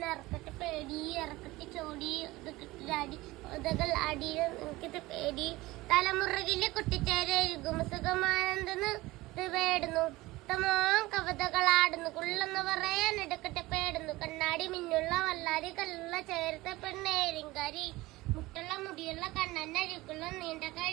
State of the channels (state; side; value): quieter; left; 19.6 dB